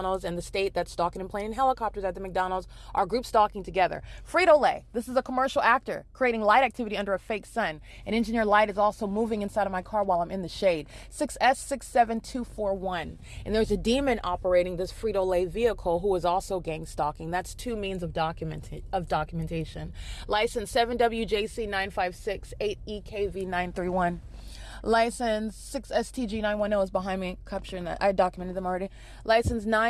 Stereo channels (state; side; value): identical; both; correlation 1.00